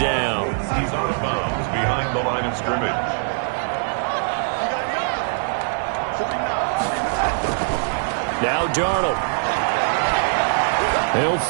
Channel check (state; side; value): silent; left; 64 dB below the other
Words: He's out of bounds behind the line of scrimmage. Now Darnold. He'll